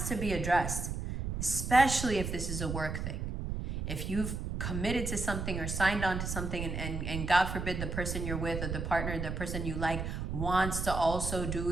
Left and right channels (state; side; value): noise; right; rumble, 3 dB below the sound